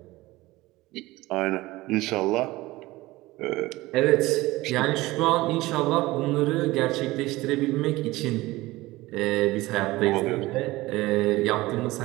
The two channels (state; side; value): quieter; left; 19.2 dB